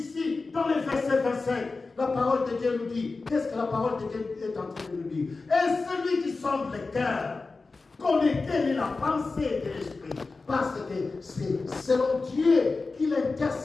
dans le verset 25, la parole de Dieu nous dit, qu'est-ce que la parole de Dieu est en train de nous dire? Et celui qui sonde le cœur connaît quelle est la pensée de l'esprit. Parce que c'est selon Dieu qu'il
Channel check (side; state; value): right; quieter; 3.9 dB